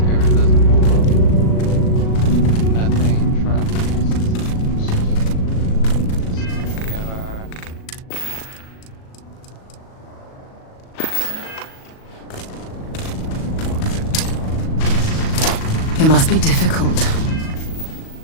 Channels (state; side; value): late; right; 38 ms